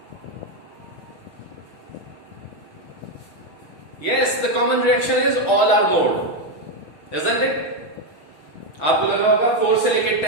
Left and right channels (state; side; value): late; right; 6.4 ms